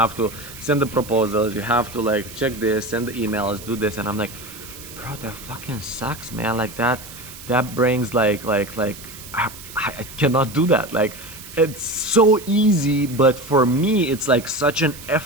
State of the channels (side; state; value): right; noise; hiss, 15 dB below the sound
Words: to send the proposals, you have to like check this, send the emails, do this, and I'm like, bro, that fucking sucks, man. Like that brings like I cannot do that. Like, it's so easy, but for me it's like such an